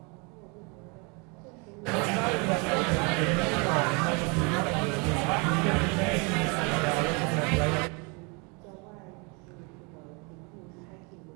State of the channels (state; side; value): quieter; left; 31.4 dB